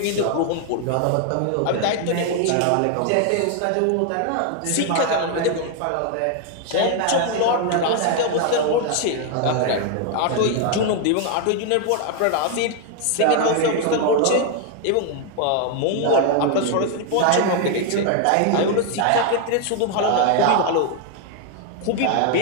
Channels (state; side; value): different; both; correlation 0.00